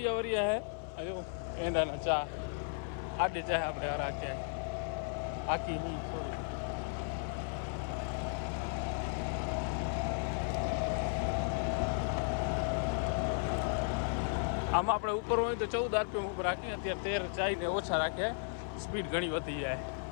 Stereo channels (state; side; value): silent; right; 54 dB below the other